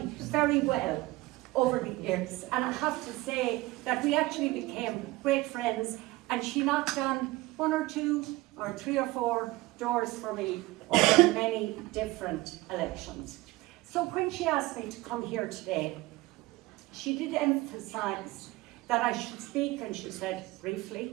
very well over the years, and I have to say that we actually became great friends, and she knocked on 1 or 2 or 3 or 4 doors for me over many different elections. So when she asked me to come here today, she did emphasise that I should speak, and she said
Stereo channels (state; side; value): quieter; left; 20.0 dB